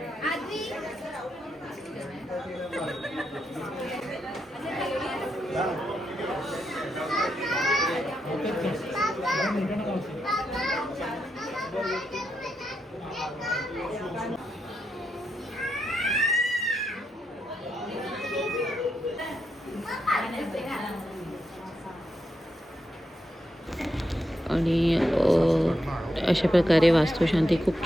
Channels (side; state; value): both; normal; correlation 0.83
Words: आजी आणि अशा प्रकारे वास्तुशांती खूप